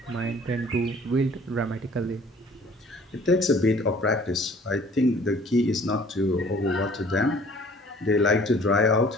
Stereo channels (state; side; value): normal; both; correlation 0.53